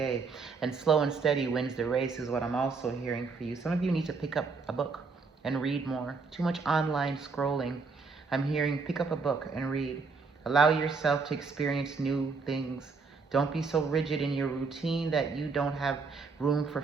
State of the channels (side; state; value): left; quieter; 4.6 dB